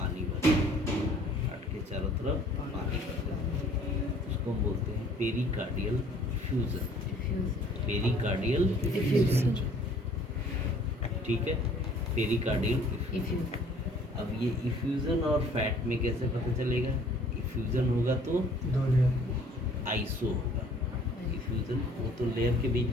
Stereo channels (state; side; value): normal; both; correlation 0.55